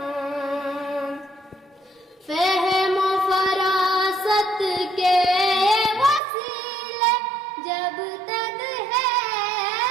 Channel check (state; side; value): drops out; left; at 6.2 s